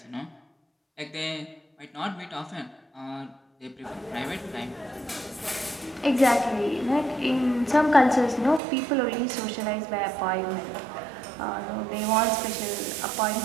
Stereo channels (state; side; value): drops out; left; at 8.6 s